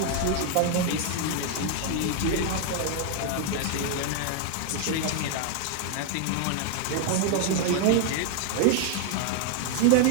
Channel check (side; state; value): both; different; correlation 0.00